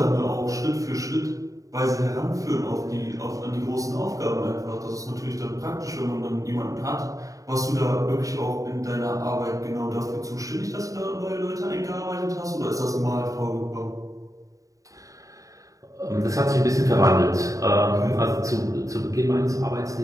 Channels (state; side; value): late; left; 0.16 ms